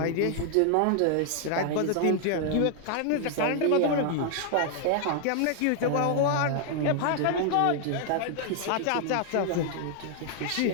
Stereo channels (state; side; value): different; both; correlation 0.00